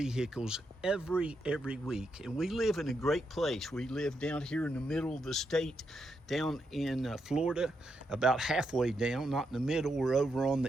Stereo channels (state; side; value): normal; both; correlation 0.82